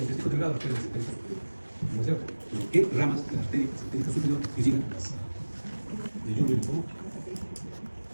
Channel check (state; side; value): inverted; both; correlation -1.00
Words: intestino delgado? La arteria mesentérica superior. ¿No es cierto? Pero ¿qué ramas de la arteria mesentérica superior irrigan las de yeyuno e ilio?